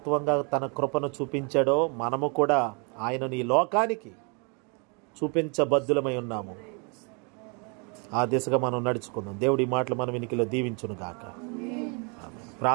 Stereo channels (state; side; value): quieter; left; 34.1 dB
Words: తన కృపను చూపించాడో మనము కూడా ఆయనను ఈ లోకానికి చూపించబద్దులమై ఉన్నాము. ఆ దిశగా మనం నడుచుకుందాం. దేవుడి మాటలు మన వెనుకలో దీవించును గాక.